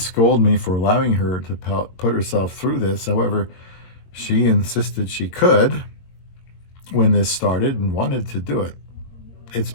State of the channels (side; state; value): right; late; 21 ms